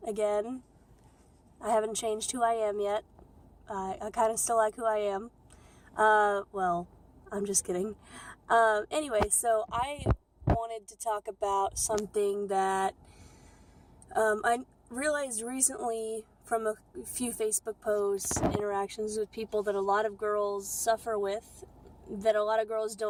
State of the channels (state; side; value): identical; both; correlation 1.00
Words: again. I haven't changed who I am yet. I kind of still like who I am. Well, I'm just kidding. Anyway, so I wanted to talk about something that I realized recently from a few Facebook posts, interactions with people that a lot of girls suffer with, that a lot of girls